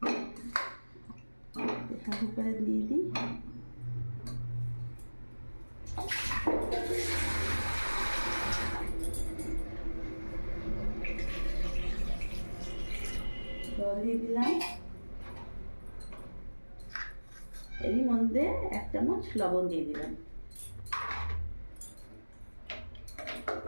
প্রেসার কুকারে দিয়ে দিই। জল দিয়ে দিলাম, এরই মধ্যে 1 চামচ লবণ দিয়ে দিলাম।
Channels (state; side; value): inverted; both; correlation -1.00